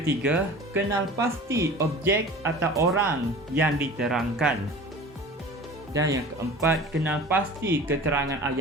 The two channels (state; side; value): normal; both; correlation 0.40